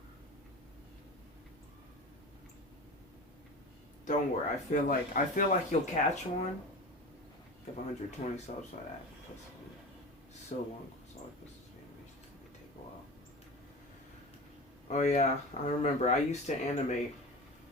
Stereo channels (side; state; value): both; normal; correlation 0.31